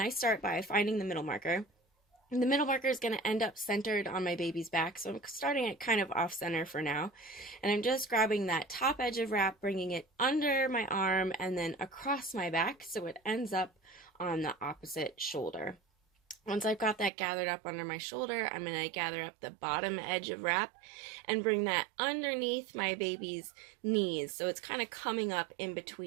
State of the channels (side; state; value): left; drops out; at 17.1 s